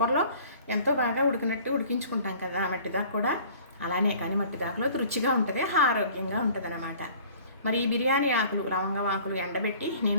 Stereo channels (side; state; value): both; inverted; correlation -0.49